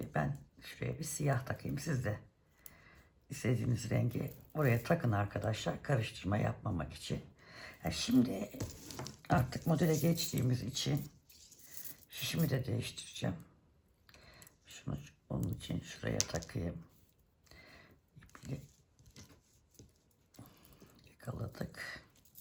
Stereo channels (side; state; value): both; identical; correlation 1.00